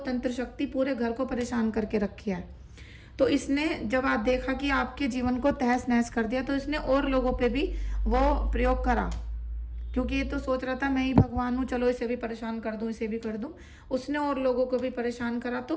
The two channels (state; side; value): identical; both; correlation 1.00